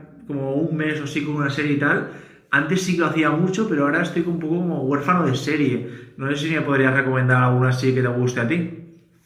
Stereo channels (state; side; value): identical; both; correlation 1.00